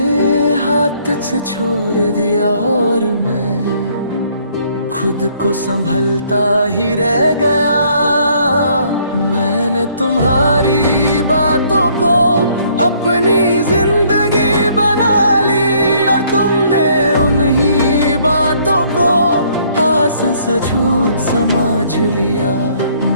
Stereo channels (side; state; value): both; inverted; correlation -0.64